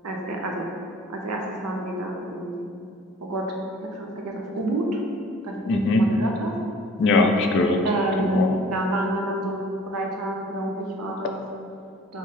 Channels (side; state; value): both; normal; correlation 0.50